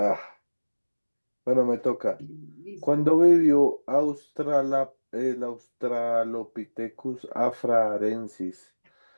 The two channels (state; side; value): inverted; both; correlation -1.00